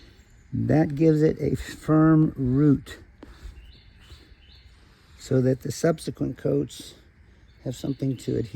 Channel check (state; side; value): identical; both; correlation 1.00